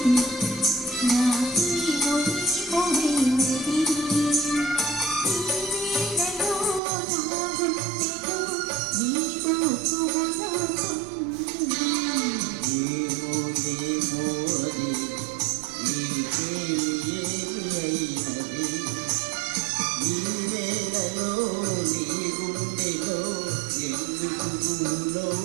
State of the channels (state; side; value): drops out; left; at 6.8 s